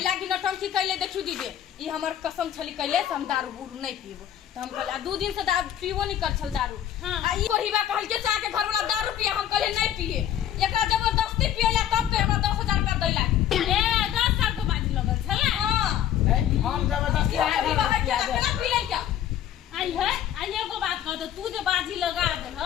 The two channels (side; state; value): right; quieter; 10.8 dB